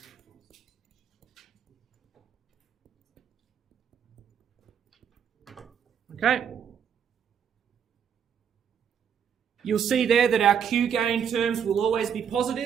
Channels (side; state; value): left; quieter; 8.0 dB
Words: Okay. You'll see there that our Q gain terms will always be